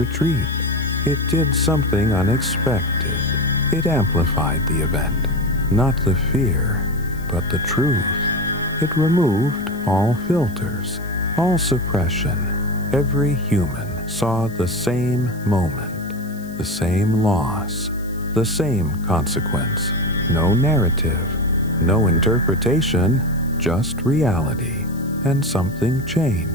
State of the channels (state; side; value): noise; left; hiss, 23 dB below the sound